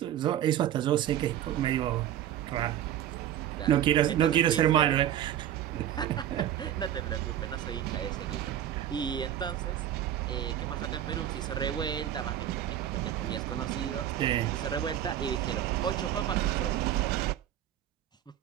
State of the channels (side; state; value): left; quieter; 11.3 dB